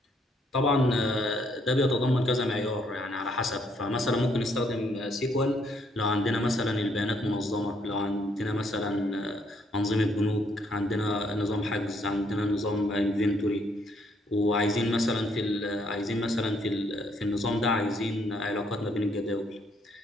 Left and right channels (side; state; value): both; normal; correlation 0.70